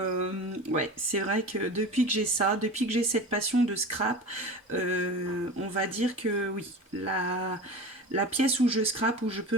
ouais, c'est vrai que depuis que j'ai ça, depuis que j'ai cette passion de scrap, on va dire que oui, la pièce où je scrape, où je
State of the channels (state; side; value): normal; both; correlation 0.32